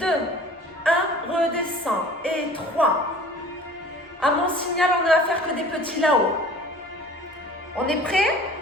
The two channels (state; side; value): normal; both; correlation 0.46